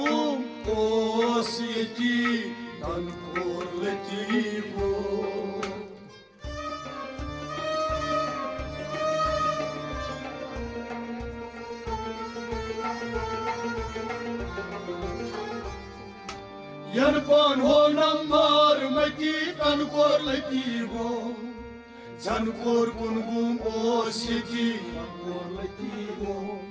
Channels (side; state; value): both; identical; correlation 1.00